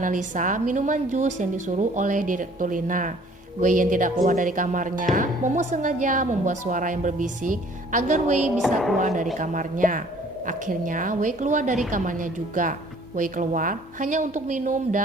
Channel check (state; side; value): normal; both; correlation 0.55